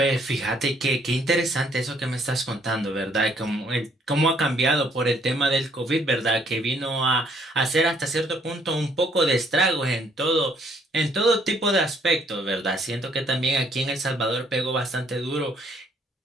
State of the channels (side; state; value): both; normal; correlation 0.66